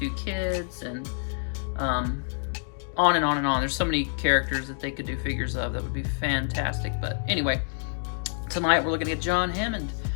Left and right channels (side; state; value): right; silent; 60 dB below the other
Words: kids, and on and on and on. There's so many characters that they could do figures of that would be fantastic. But anyway, tonight we're looking at John Hammond.